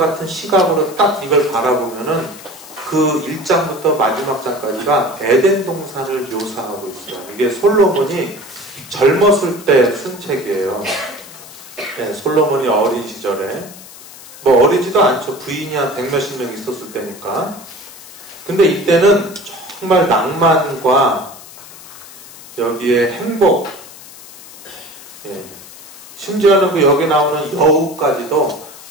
시각으로 딱 이걸 바라보면은 그 1장부터 마지막 장까지가 에덴 동산을 묘사하고 있어요. 이게 솔로몬이 젊었을 때 쓴 책이에요. 네, 솔로몬이 어린 시절에 뭐 어리지도 않죠. 부인이 한 100몇십 명 있었을 때니까. 근데 이때는 정말 낭만과 여기에 행복, 예. 심지어는 그 여기 나오는 여우까지도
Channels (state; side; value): noise; left; hiss, 18 dB below the sound